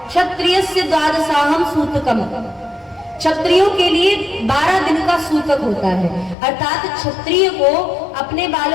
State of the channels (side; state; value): right; drops out; at 6.4 s